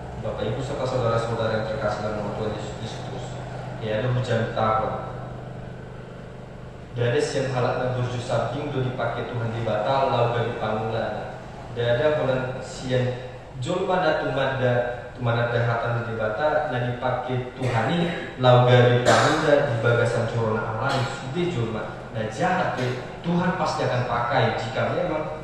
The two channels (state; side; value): identical; both; correlation 1.00